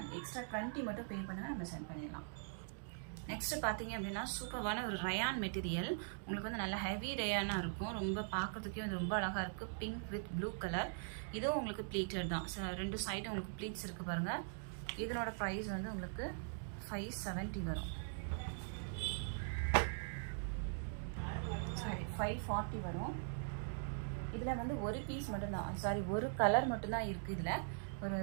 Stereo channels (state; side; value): silent; left; digital silence